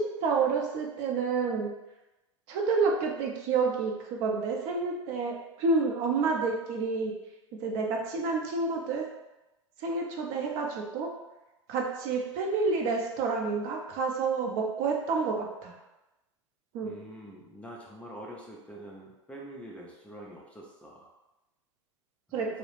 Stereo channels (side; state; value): left; quieter; 4.0 dB